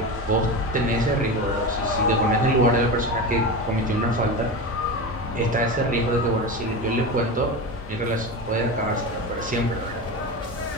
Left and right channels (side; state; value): both; normal; correlation 0.23